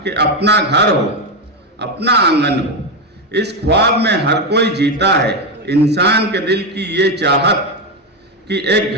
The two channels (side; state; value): both; normal; correlation 0.10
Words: कि अपना घर हो, अपना आंगन हो। इस ख्वाब में हर कोई जीता है, इंसान के दिल की ये चाहत कि एक